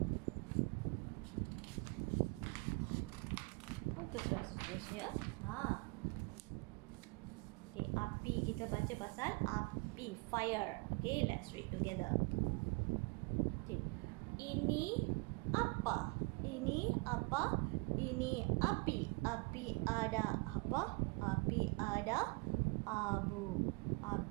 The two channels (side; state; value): left; quieter; 28.4 dB